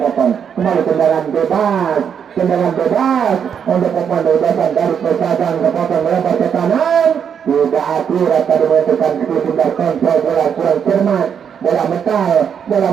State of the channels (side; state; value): left; quieter; 7.7 dB